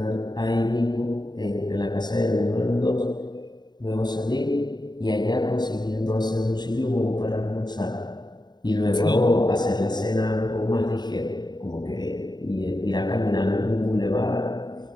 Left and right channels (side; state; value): right; late; 0.21 ms